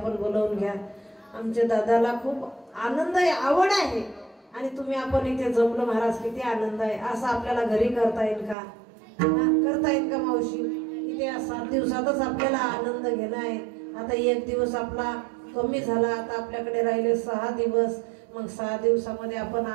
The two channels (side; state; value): left; drops out; at 8.6 s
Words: बोलवून घ्या. आमच्या दादाला खूप आनंद आहे, आवड आहे. आणि तुम्ही आपण इथे जमलो महाराज, किती आनंद आहे. असं आपल्याला घरी करता येईल का? करता येईल का मावशी? इथे 7 दिवसातच आपल्याला आनंद घेणं आहे. आता 1 दिवस आपला कमी झाला. आता आपल्याकडे राहिले 6 दिवस. मग 6 दिवसामध्ये आपण